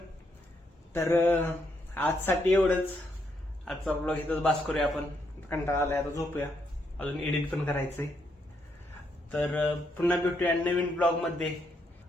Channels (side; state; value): both; normal; correlation 0.76